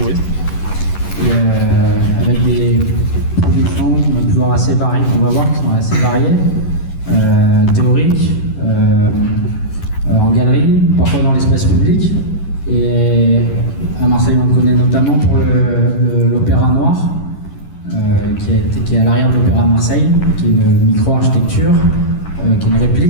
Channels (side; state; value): right; late; 11 ms